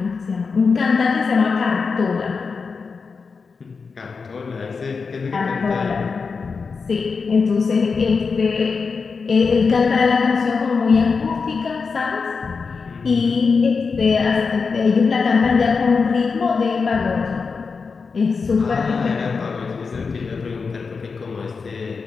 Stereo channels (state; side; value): quieter; right; 5.0 dB